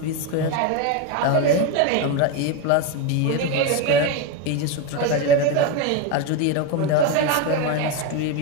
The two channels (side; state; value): both; different; correlation 0.03